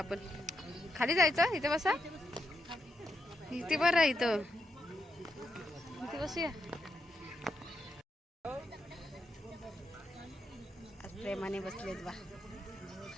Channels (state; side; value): normal; both; correlation 0.83